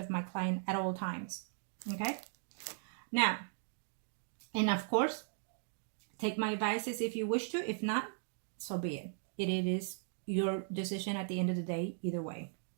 my client at all times, okay? Now, and of course, take my advices if you wish to. If not, so be it. It is your decision at the end of the day, either way,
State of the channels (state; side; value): silent; left; digital silence